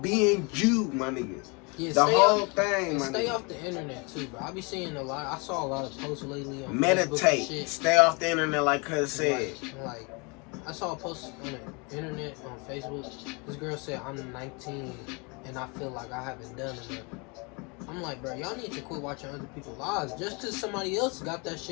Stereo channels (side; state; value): right; quieter; 30.5 dB